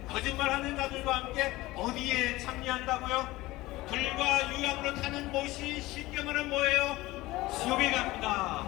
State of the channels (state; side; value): quieter; right; 18.8 dB